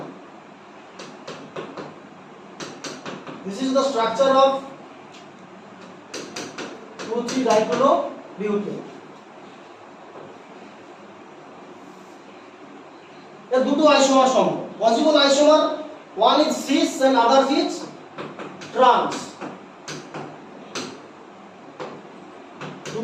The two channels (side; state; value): both; identical; correlation 1.00